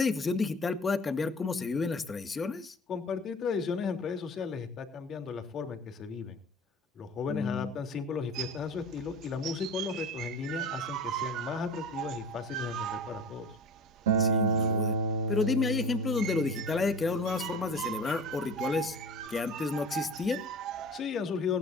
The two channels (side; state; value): both; normal; correlation 0.39